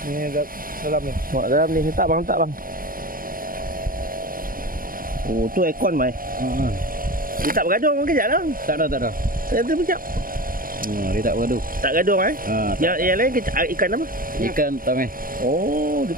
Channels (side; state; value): left; late; 0.41 ms